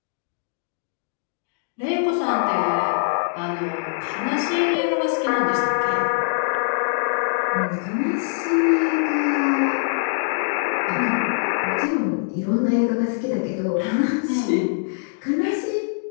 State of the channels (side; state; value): right; silent; digital silence